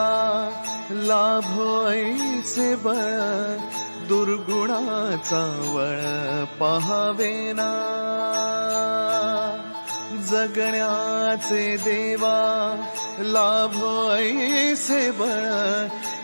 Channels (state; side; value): inverted; both; correlation -1.00